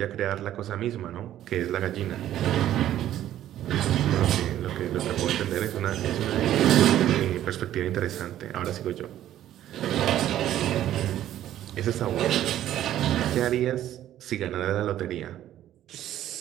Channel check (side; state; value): left; quieter; 12.3 dB